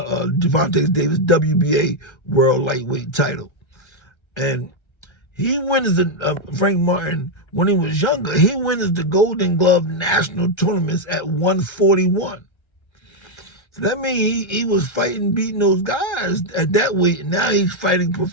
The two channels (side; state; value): right; late; 1.3 ms